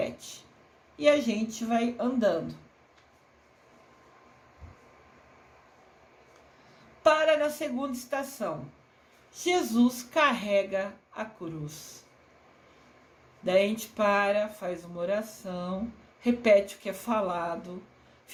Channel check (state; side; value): identical; both; correlation 1.00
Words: E a gente vai andando. Para na segunda estação: Jesus carrega a cruz. Daí a gente para, faz uma oração, repete o que é falado,